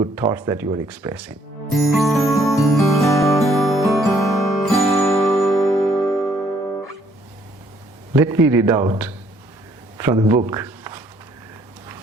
thoughts that you are expressing. Let me read out from the book,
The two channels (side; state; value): both; normal; correlation 0.66